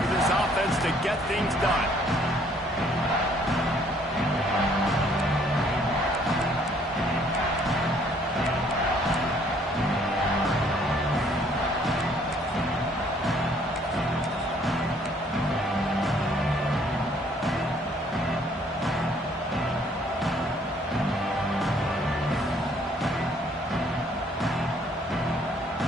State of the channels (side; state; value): both; normal; correlation 0.63